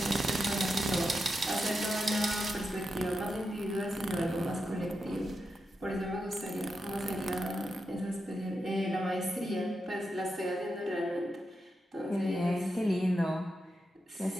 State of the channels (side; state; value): both; normal; correlation 0.87